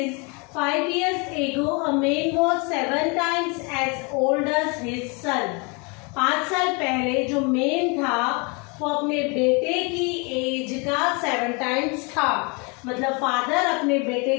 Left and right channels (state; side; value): quieter; right; 31.2 dB